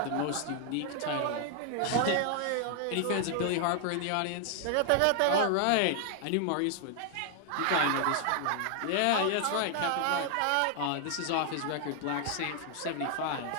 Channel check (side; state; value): both; different; correlation 0.00